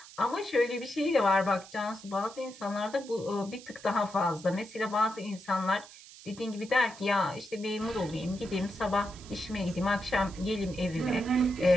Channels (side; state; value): right; noise; hiss, 19 dB below the sound